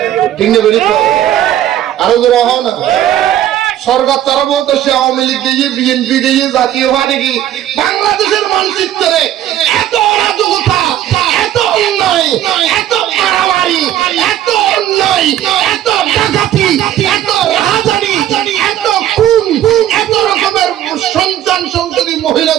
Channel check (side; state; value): left; quieter; 12.1 dB